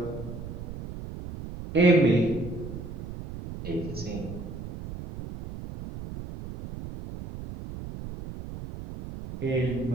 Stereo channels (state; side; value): noise; right; rumble, 10 dB below the sound